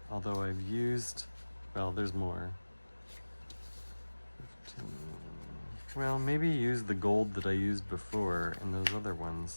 Although I've used, well, there's more. 15. Well, maybe use the gold that I used before in those other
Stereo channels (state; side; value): inverted; both; correlation -1.00